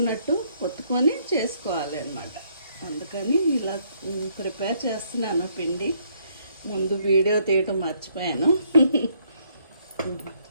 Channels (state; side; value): inverted; both; correlation -0.69